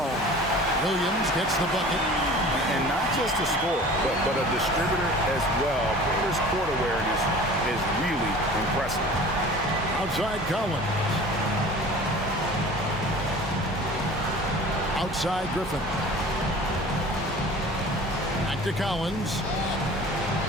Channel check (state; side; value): normal; both; correlation 0.43